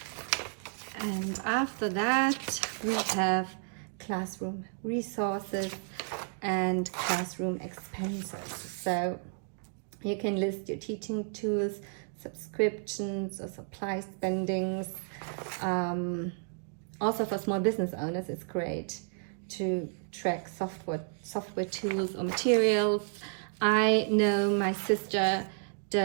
And after that, we have classroom resources and classroom expenses. So you can list your teaching tools, subscriptions, or supply spendings. Also for small business owners, it's great to track software tools or materials. I know my sister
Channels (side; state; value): left; silent; 57 dB below the other